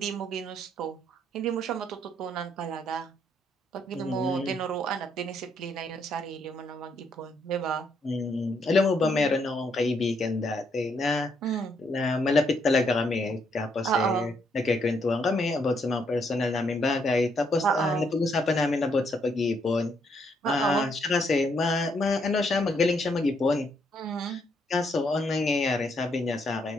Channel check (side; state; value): both; normal; correlation 0.74